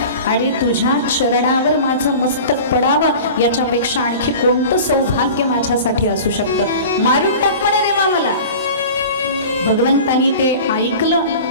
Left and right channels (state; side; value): inverted; both; correlation -0.37